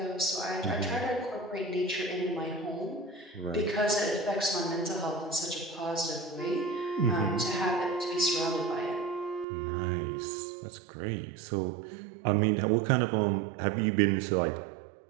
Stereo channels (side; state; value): left; drops out; at 9.5 s